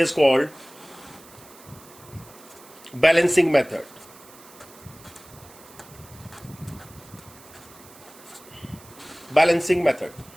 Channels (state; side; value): noise; right; hiss, 22 dB below the sound